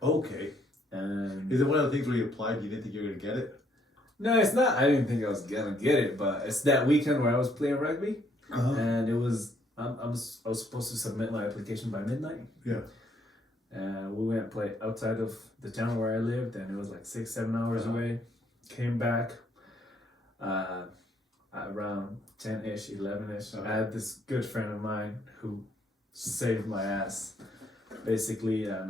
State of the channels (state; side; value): normal; both; correlation 0.69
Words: Okay. And is it one of the things where you applied, you didn't think you were going to get it? No, it's not. I didn't think I was gonna get it, but it's that weekend where I was playing rugby, and it was I was supposed to submit my application by midnight. Yeah. And we went and played outside of the town where I lived, and it was like 6-7 hours away. Came back around 10-ish, 11-ish. I had this good friend of mine who saved my ass. Basically, and